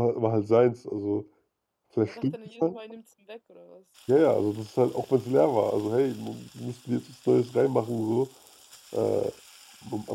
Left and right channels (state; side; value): identical; both; correlation 1.00